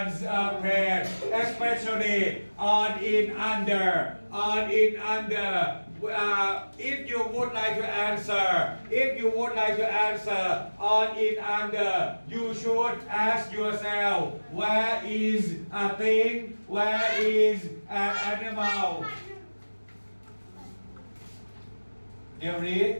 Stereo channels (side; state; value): both; inverted; correlation -1.00